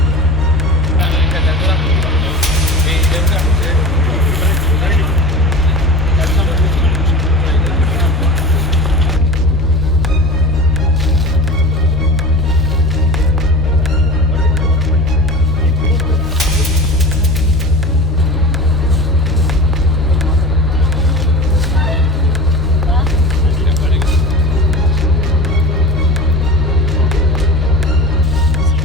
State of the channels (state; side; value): normal; both; correlation 0.35